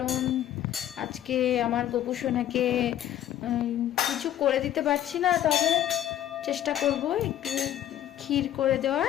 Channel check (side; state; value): right; quieter; 11.7 dB